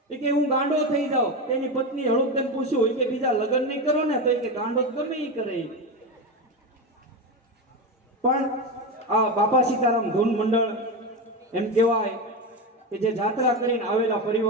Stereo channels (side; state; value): both; normal; correlation 0.17